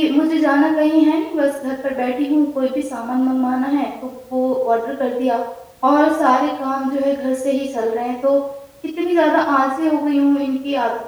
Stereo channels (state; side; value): identical; both; correlation 1.00